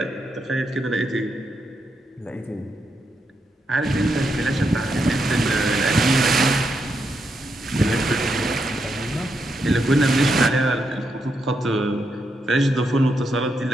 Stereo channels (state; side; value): normal; both; correlation 0.82